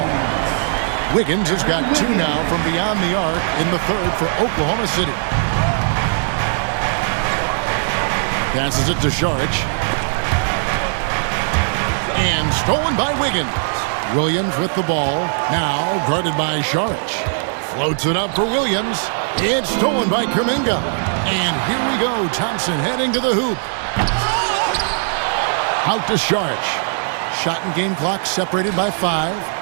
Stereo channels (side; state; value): left; silent; 66 dB below the other